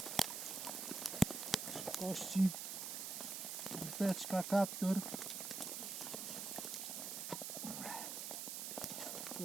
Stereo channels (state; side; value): noise; right; hiss, 4 dB below the sound